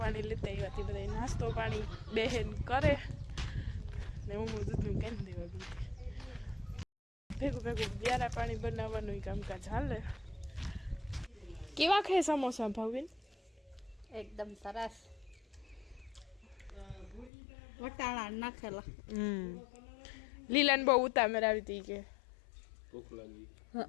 લેતા આવ્યા. તે બધા નાસ્તો પાણી બહેન કરે ને હું દૂધનું કેમ દેવા ગઈ ભેગું વ્યારા પાણી બનાવવાનું કામકાજ હાલે. કેવા ખાય સમોસા ભાવબેન? એકદમ સરસ. વટાણા નાખેલા. લીલાને બહુ ઉતામેર આવી હતી કે ભૂખ લાગી.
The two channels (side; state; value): right; drops out; at 17.3 s